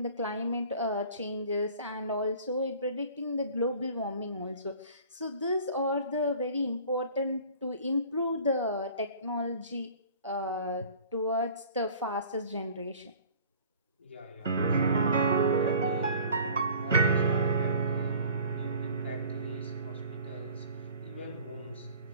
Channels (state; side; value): inverted; both; correlation -0.48